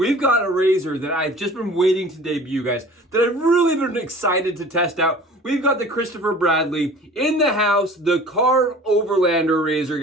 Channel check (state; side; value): normal; both; correlation 0.45